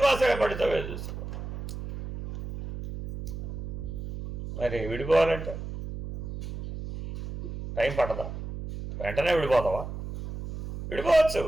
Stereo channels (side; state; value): right; noise; hum, 8 dB below the sound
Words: పడితే చూసుకో. మరి విడిపోవాలంటే టైం పట్టదా? వెంటనే విడిపోతావా? విడిపోవచ్చు.